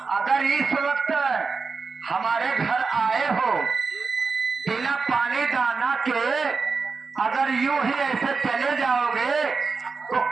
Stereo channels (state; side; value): quieter; left; 4.7 dB